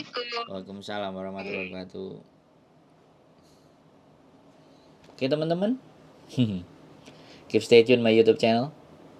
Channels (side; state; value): both; identical; correlation 1.00